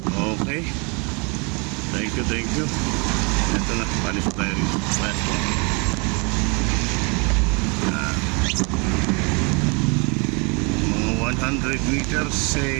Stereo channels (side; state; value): left; quieter; 31.9 dB